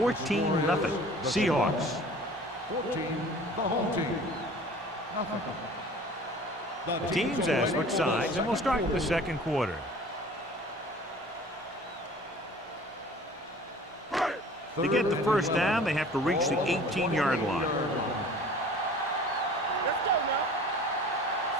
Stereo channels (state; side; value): normal; both; correlation 0.46